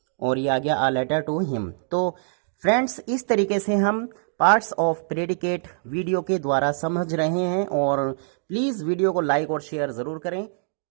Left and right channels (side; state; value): left; silent; digital silence